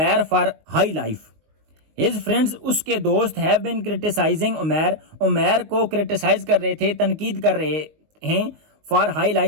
for high life. His friends, उसके दोस्त, have been criticising Umair, Umair को क्रिटिसाइज कर रहे थे, तनकीद कर रहे हैं, for high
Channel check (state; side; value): late; left; 19 ms